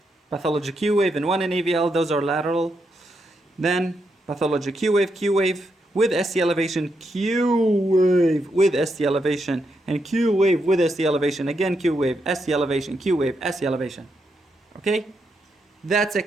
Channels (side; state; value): both; normal; correlation 0.81